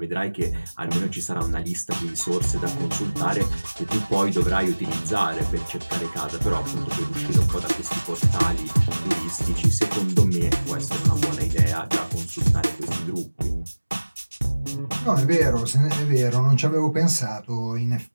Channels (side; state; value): both; inverted; correlation -1.00